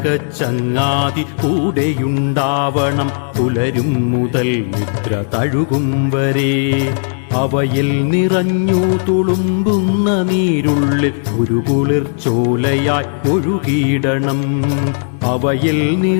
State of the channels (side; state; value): right; silent; digital silence